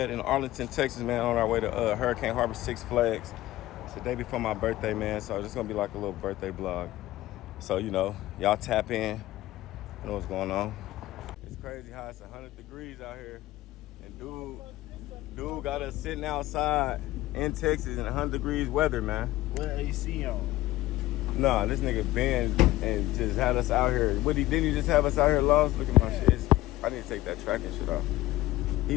In Arlington, Texas, man, on our way to Hurricane Harbor, Six Flags. It's the day before my birthday, man, so it's gonna be like a little birthday vlog. So, you know, y'all tap in, you know what's going on. It's crazy how it's 100 degrees out here, and dude got us sitting outside in Texas in 100 degrees weather, man. What AC on? Nah, this nigga Ben and just had us out here. Didn't he just have us out here lost? Look at my shit. I need to take that tracking shit off.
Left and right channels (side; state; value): right; quieter; 16.3 dB